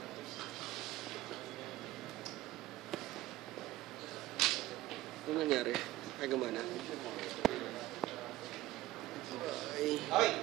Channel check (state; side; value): quieter; left; 16.1 dB